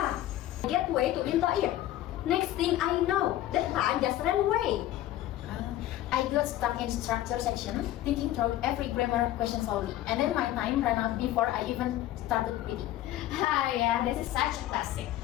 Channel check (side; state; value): right; quieter; 14.0 dB